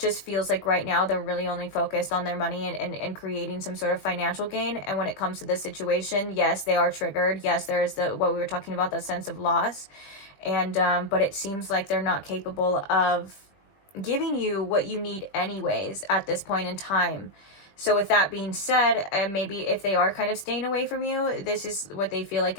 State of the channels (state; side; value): late; right; 20 ms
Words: feels like right now they're really only focused on their money and creating some sort of financial gain. And when it comes to this situation, yes, they are triggered. Yes, there is what we were talking about, that sense of loss. And but it seems like they're not capable of giving you what you need anyways at this point in time. So with that being said, maybe if they are kind of staying away from you, this is what they feel like